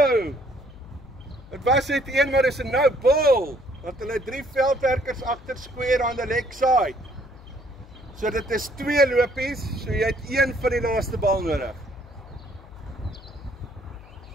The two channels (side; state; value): left; noise; hum, 20 dB below the sound